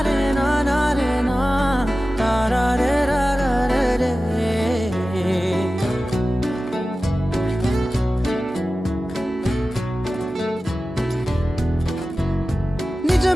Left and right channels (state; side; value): normal; both; correlation 0.95